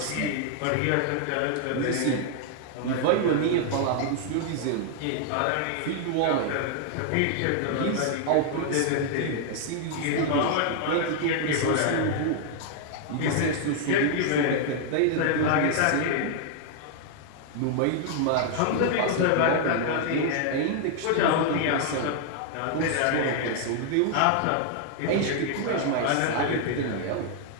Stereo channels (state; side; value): different; both; correlation 0.00